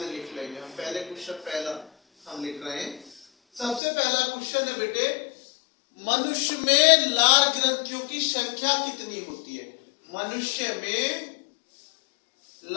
लिख लेंगे हम। पहले क्वेश्चन पहला हम लिख रहे हैं। सबसे पहला क्वेश्चन है बेटे मनुष्य में लार ग्रंथियों की संख्या कितनी होती है? मनुष्य में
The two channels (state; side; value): drops out; right; at 3.8 s